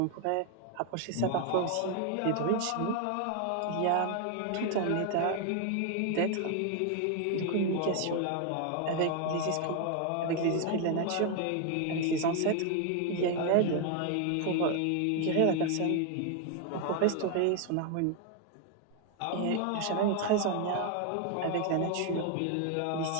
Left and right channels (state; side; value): different; both; correlation 0.01